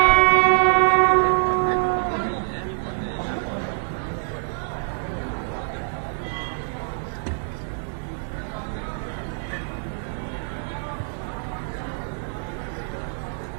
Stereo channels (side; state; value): left; silent; digital silence